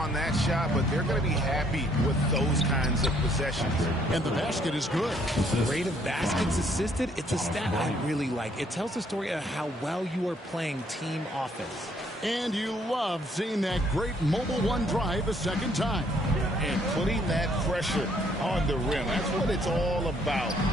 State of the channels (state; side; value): normal; both; correlation 0.66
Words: that shot, but they're going to be happy with those kinds of possessions. And the basket is good. Rate of baskets assisted, it's a stat I really like. It tells the story of how well you are playing team offense. And you love seeing that great mobile one drive a second time. And putting that pressure on the rim. That's what it's all about,